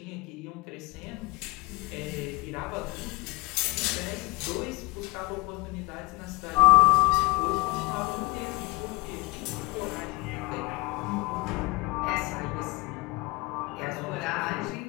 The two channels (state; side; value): quieter; right; 24.4 dB